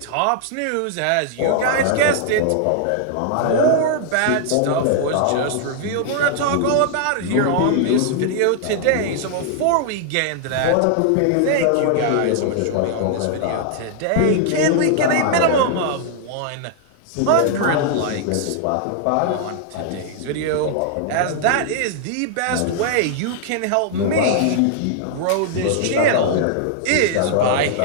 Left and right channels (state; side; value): different; both; correlation 0.00